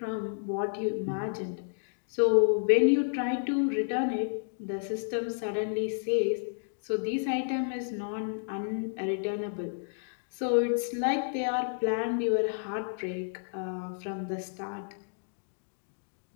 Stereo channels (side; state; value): right; silent; digital silence